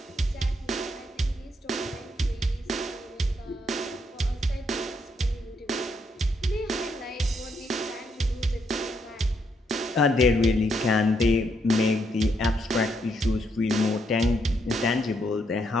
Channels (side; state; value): both; normal; correlation 0.75